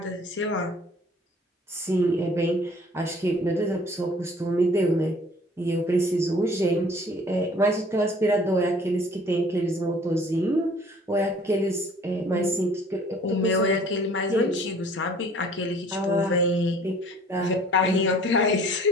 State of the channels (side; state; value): both; normal; correlation 0.53